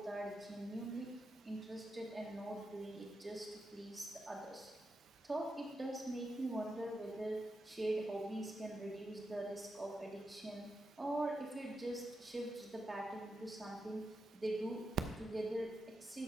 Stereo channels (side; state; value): both; normal; correlation 0.87